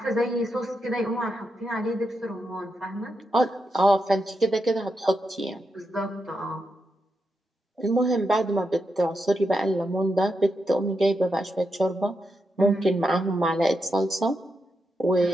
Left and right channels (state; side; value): normal; both; correlation 0.85